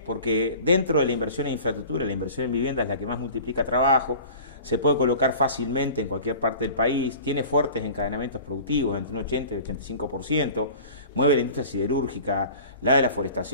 Porque dentro de la inversión en infraestructura, la inversión en vivienda es la que más multiplica trabajo, se puede colocar fácilmente en cualquier parte del país, tiene fuertes encadenamientos productivos, entre un 80 y 85%, mueve la industria siderúrgica, la de la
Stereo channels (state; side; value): inverted; both; correlation -0.41